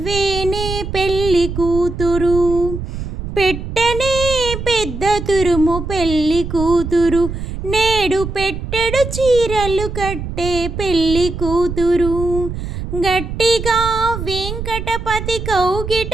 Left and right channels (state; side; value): noise; right; rumble, 6 dB below the sound